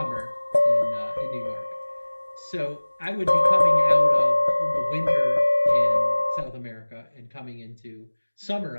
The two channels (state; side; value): inverted; both; correlation -1.00